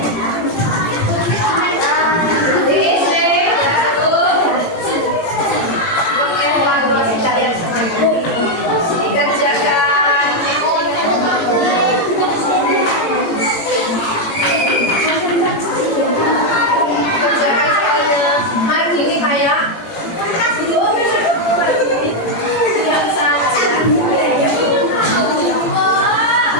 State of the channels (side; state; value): right; late; 18 ms